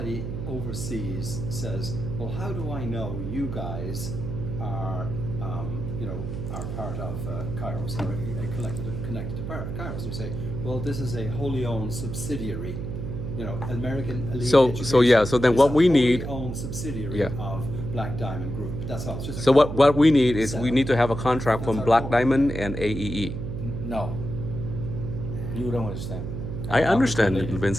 overseas says, "Well, how do I know you guys are, are part of Kairos or connected to Kairos?" You say, "Well, this is a wholly owned subsidiary." American Elite So Education yeah, so then is what a we wholly need- owned subsidiary Yeah. of Black Diamond Group. That's all. It's just a So what corporate we need is we setup. need to have a contract from That's our Black goal. Diamond and AEE. No. You don't understand. I understand, Lady.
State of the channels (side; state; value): right; noise; hum, 5 dB below the sound